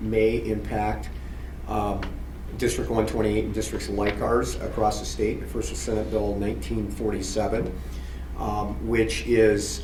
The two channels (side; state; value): both; identical; correlation 1.00